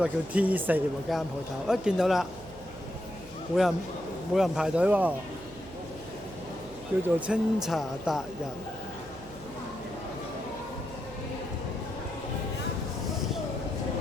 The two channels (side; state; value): right; noise; hum, 19 dB below the sound